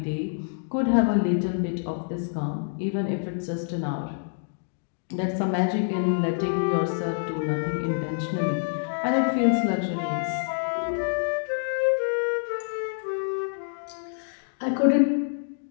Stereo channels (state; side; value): silent; right; digital silence